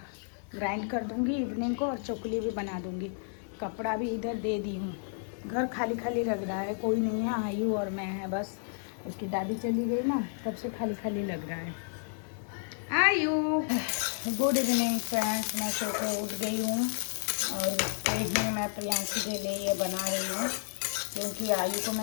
ग्राइंड कर दूंगी इवनिंग को, और चोखली भी बना दूंगी। कपड़ा भी इधर दे दी हूँ। घर खाली खाली लग रहा है, कोई नहीं है, आयु और मैं है बस। उसकी दादी चली गई ना, तब से खाली खाली लग रहा है। आयु, गुड इवनिंग फ्रेंड्स। मैं सो के उठ गई हूँ और ही मैं प्रियांशी के लिए ये बना रही हूँ, क्योंकि आयु को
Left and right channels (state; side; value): silent; right; digital silence